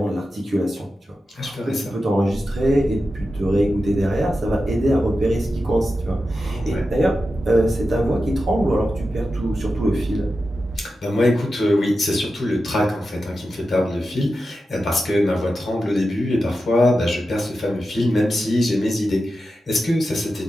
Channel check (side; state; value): both; normal; correlation 0.91